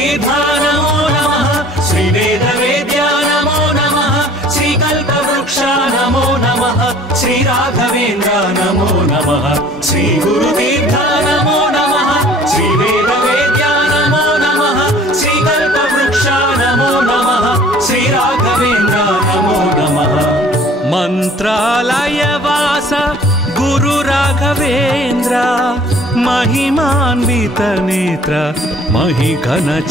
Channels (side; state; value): both; normal; correlation 0.52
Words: నమో నమః శ్రీ వేద వేద్య నమో నమః శ్రీ కల్పవృక్ష నమో నమః శ్రీ రాఘవేంద్ర నమో నమః శ్రీ గురుతీర్థ నమో నమః శ్రీ వేద వేద్య నమో నమః శ్రీ కల్పవృక్ష నమో నమః శ్రీ రాఘవేంద్ర నమో నమః మంత్రాలయవాస గురు రాఘవేంద్ర महिमान्वित नेत्र महिघन